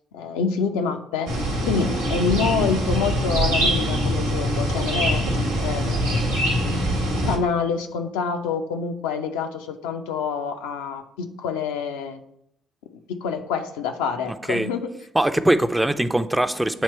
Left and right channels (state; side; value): normal; both; correlation 0.59